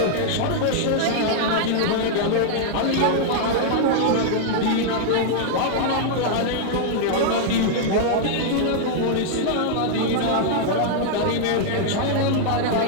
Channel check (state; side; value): different; both; correlation -0.01